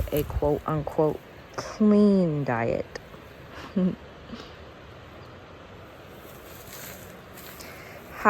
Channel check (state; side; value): identical; both; correlation 1.00